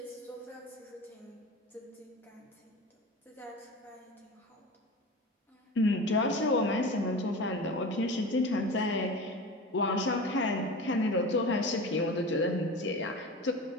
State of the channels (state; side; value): normal; both; correlation 0.31